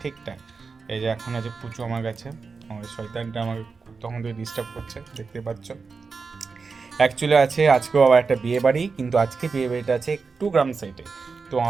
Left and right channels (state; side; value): quieter; left; 4.7 dB